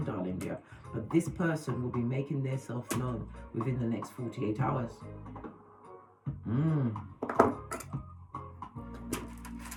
darling dear. But this person will be making their self known within the next 48 hours.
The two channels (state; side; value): identical; both; correlation 1.00